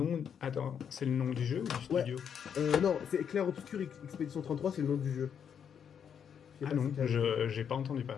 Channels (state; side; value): quieter; right; 7.9 dB